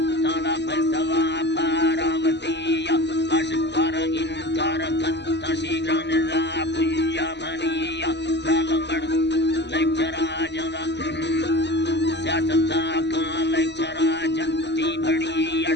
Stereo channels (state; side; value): late; right; 0.50 ms